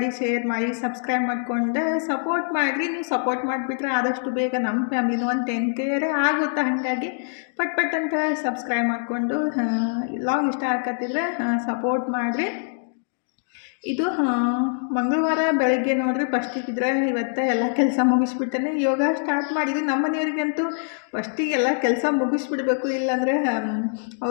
ಶೇರ್ ಮಾಡಿ, ಸಬ್ಸ್ಕ್ರೈಬ್ ಮಾಡ್ಕೊಂಡು ಸಪೋರ್ಟ್ ಮಾಡಿರಿ. ನೀವು ಸಪೋರ್ಟ್ ಮಾಡಿಬಿಟ್ರೆ ಆದಷ್ಟು ಬೇಗ ನಮ್ಮ ಫ್ಯಾಮಿಲಿನೂ ಒಂದು 10K ಆಗುತ್ತೆ. ಹಾಗಾಗಿ ಪಟ್ ಅಂತ ಸಬ್ಸ್ಕ್ರೈಬ್ ಮಾಡಿಕೊಂಡು ಲಾಗ್ ಇಷ್ಟ ಆಗತ್ತಿದ್ರೆ ಸಪೋರ್ಟ್ ಮಾಡಿರಿ. ಇದು ಮಂಗಳವಾರ ಬೆಳಗ್ಗೆ ನೋಡ್ರಿ ಫಸ್ಟಿಗಿದ್ರೆ ಇವತ್ತು ಎಲ್ಲ ಕೆಲಸ ಮುಗಿಸ್ಬಿಟ್ಟೇನೆ ಯೋಗ ಸ್ಟಾರ್ಟ್ ಮಾಡಿದ್ವಿ. ನಮ್ಮ ಮನೆಯವ್ರಿಗಂತೂ ಫಸ್ಟಿಗೆ ಎಲ್ಲ ಕೆಲಸ ಮುಗಿಸ್ಬಿಡ್ಬೇಕು, ಇಲ್ಲಾಂದರೆ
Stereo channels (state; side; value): silent; right; digital silence